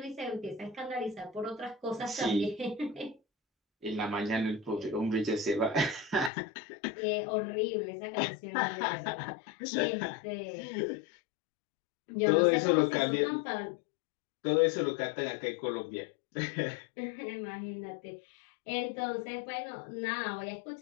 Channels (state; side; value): drops out; right; at 6.3 s